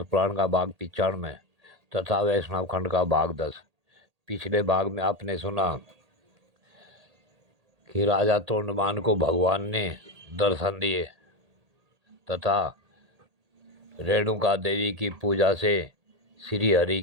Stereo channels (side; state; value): left; late; 1.8 ms